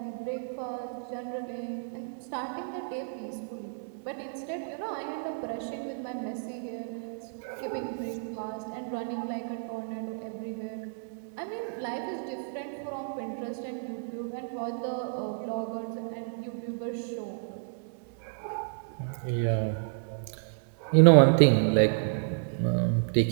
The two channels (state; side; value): silent; left; digital silence